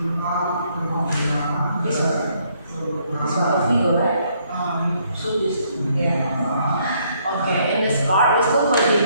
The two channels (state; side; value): inverted; both; correlation -0.69